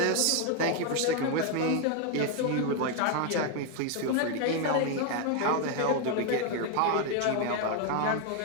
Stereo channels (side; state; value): both; different; correlation 0.01